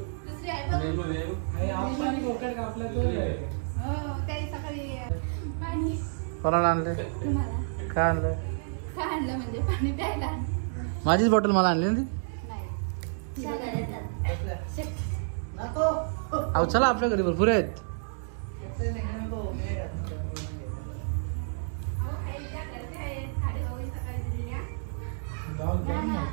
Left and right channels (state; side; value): silent; left; digital silence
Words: कोणाला आणले? काय आणलं? आणलं म्हणजे पाणी प्यायला. माझीच बॉटल मला आणली ना ती. नको अहो चला आपल्या घरी भरपूर आहेत.